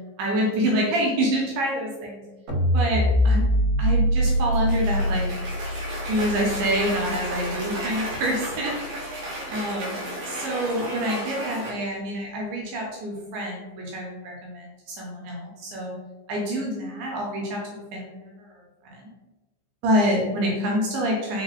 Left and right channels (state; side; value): late; left; 15 ms